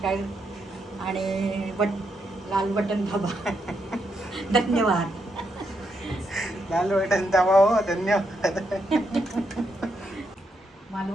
आणि लाल बटन दाबा. धन्यवाद. लाल बटन दाबा हो. धन्यवाद.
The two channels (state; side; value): normal; both; correlation 0.80